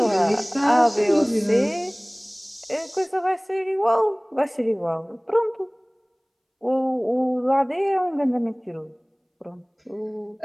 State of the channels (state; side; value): identical; both; correlation 1.00